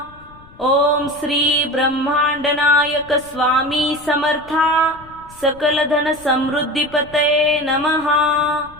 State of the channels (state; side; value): noise; left; rumble, 23 dB below the sound